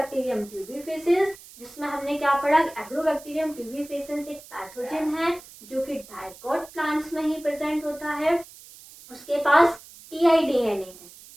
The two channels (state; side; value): noise; right; hiss, 20 dB below the sound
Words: ट्यूबिफिकेंस, जिसमें हमने क्या पढ़ा, एग्रोबैक्टीरियम ट्यूबिफिकेंस एक पैथोजन है जो कि डाइकोट प्लांट्स में ही प्रेजेंट होता है। उसके पास टीआईडीएनए है।